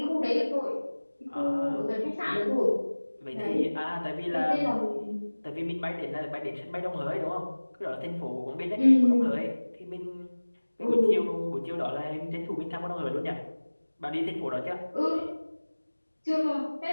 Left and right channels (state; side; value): inverted; both; correlation -1.00